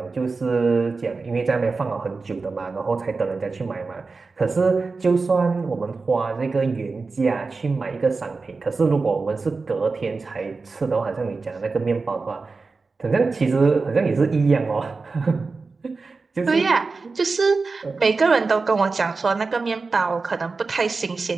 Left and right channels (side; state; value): left; quieter; 4.1 dB